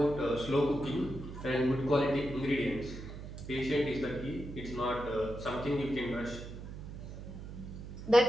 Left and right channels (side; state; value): right; noise; hum, 10 dB below the sound